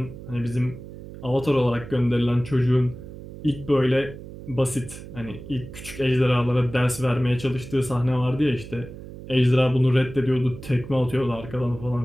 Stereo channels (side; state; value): right; noise; hum, 14 dB below the sound